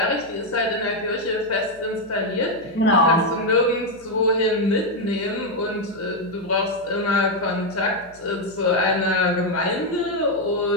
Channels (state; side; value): noise; left; hum, 26 dB below the sound